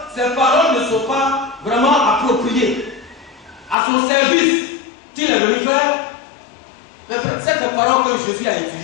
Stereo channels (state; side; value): drops out; right; at 3.8 s